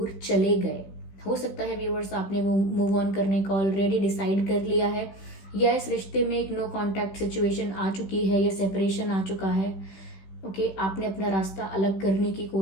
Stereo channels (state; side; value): late; right; 16 ms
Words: चले गए। हो सकता है व्यूअर्स आपने वो मूव ऑन करने का ऑलरेडी डिसाइड कर लिया है, या इस रिश्ते में एक नो कॉन्टैक्ट सिचुएशन आ चुकी है या सेपरेशन आ चुका है, ओके, आपने अपना रास्ता अलग करने की